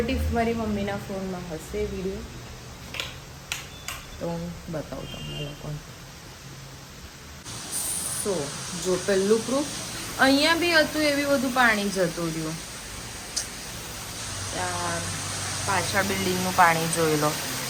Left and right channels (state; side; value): identical; both; correlation 1.00